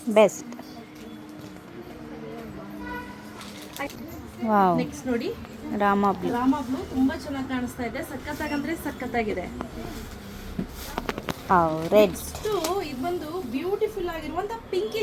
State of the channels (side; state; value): both; identical; correlation 1.00